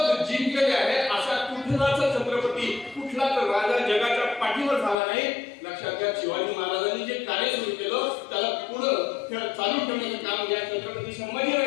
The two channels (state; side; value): drops out; right; at 5.0 s